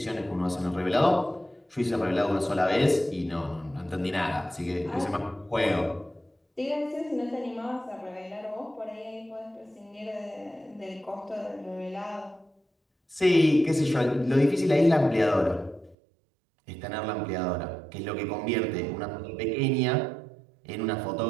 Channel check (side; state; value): left; drops out; at 16.0 s